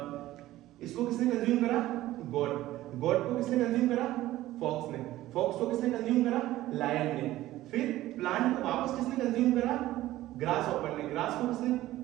इसको किसने कंज्यूम करा, गॉड। गॉड को किसने कंज्यूम करा, फॉक्स ने। फॉक्स को किसने कंज्यूम करा, लायन ने। फिर प्लांट को वापस किसने कंज्यूम करा, ग्रास हॉपर ने। ग्रास को किसने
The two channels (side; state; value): left; quieter; 15.5 dB